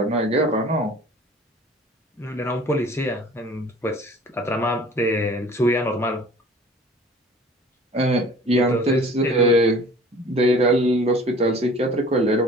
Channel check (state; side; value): normal; both; correlation 0.47